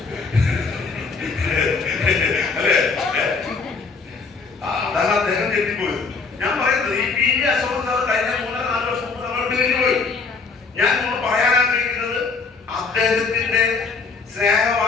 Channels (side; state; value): right; quieter; 4.7 dB